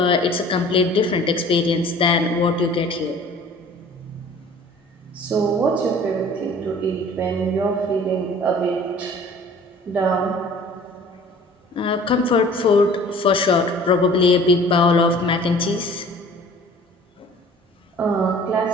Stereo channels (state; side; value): normal; both; correlation 0.48